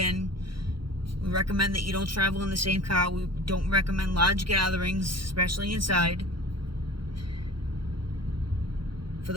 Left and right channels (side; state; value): left; late; 0.73 ms